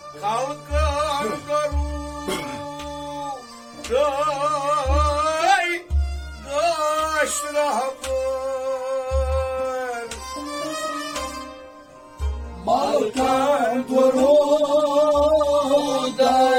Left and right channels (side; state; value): both; identical; correlation 1.00